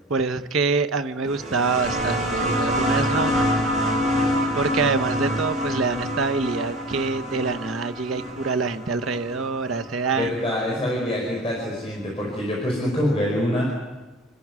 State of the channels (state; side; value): normal; both; correlation 0.36